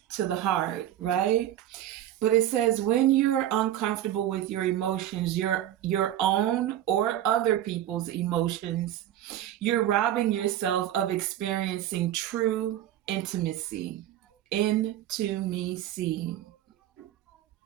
to the heart, right? But it says when you're uncomfortable with your emotions, your own or other people's emotions, you're robbing yourself of experiencing true intimacy. Intimacy.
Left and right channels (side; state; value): left; quieter; 12.1 dB